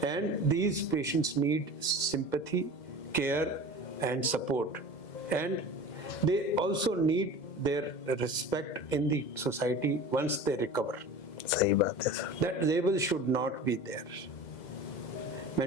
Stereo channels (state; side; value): late; right; 2.0 ms